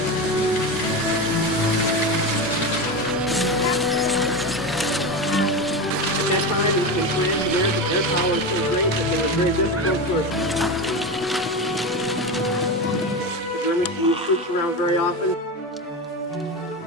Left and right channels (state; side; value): normal; both; correlation 0.21